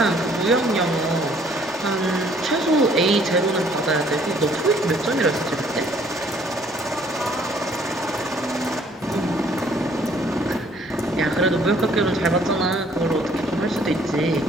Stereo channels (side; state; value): both; normal; correlation 0.61